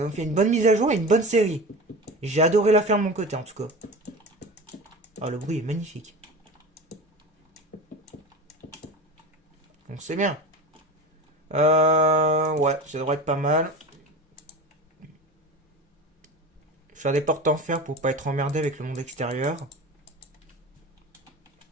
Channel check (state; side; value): normal; both; correlation 0.31